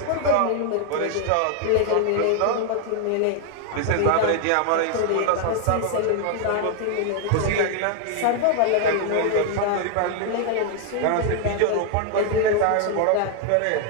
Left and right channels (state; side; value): different; both; correlation 0.00